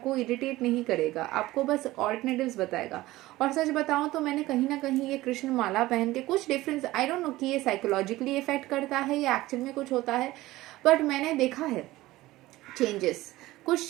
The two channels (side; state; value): left; quieter; 17.7 dB